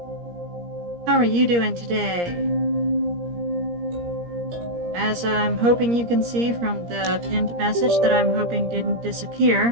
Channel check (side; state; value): left; late; 17 ms